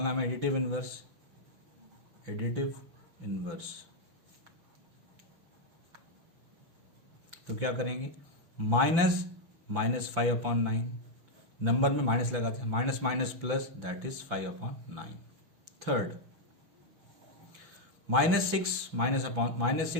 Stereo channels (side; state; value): left; late; 5.9 ms